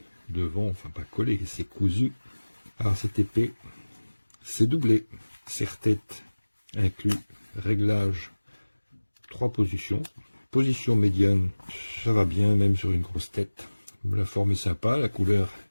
devant, enfin pas collée, c'est cousu. Alors cette épée, c'est doublé. Serre-tête inclus. Réglage, 3 positions. Position médiane, ça va bien, même sur une grosse tête. La forme est sympa, la couleur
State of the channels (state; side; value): inverted; both; correlation -1.00